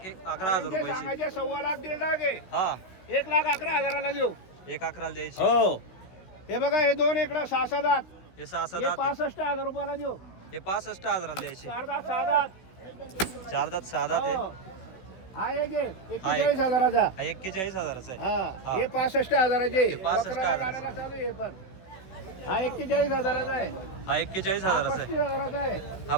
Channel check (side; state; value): right; late; 16 ms